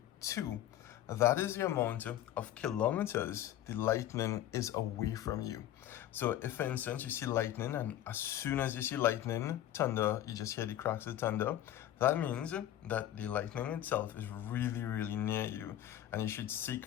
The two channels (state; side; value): quieter; right; 12.5 dB